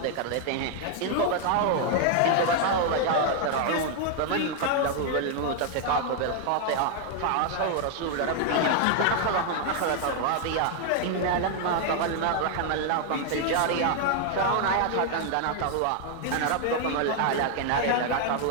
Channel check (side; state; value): both; different; correlation 0.00